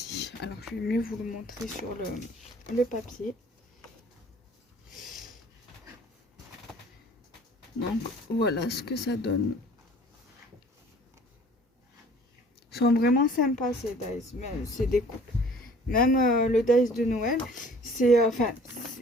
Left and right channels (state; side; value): normal; both; correlation 0.52